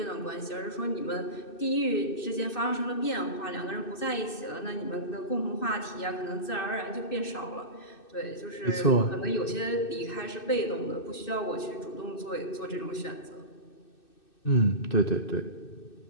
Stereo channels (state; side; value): late; right; 2.6 ms